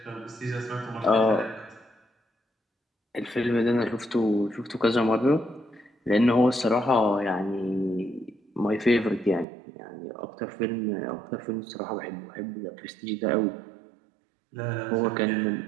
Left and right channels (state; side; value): drops out; left; at 9.5 s